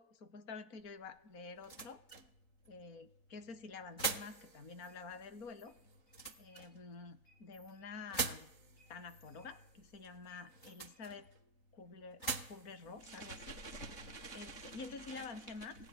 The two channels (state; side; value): late; right; 4.0 ms